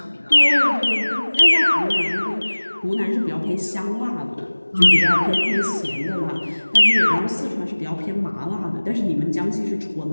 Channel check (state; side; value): inverted; both; correlation -1.00